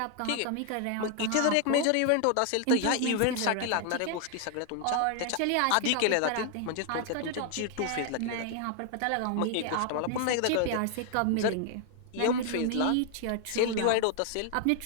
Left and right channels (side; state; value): both; different; correlation 0.00